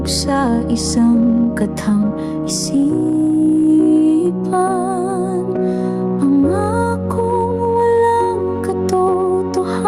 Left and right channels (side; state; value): both; identical; correlation 1.00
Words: sa isang katang isipan. Pangakong walang